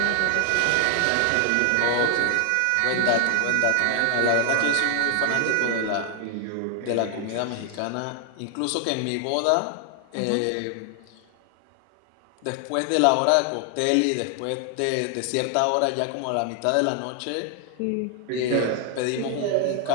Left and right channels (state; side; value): different; both; correlation 0.00